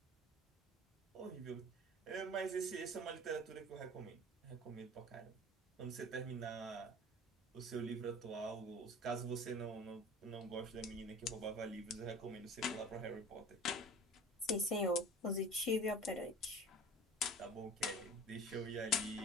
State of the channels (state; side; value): normal; both; correlation 0.42